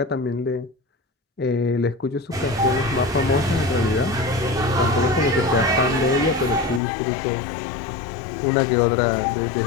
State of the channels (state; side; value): drops out; right; at 6.8 s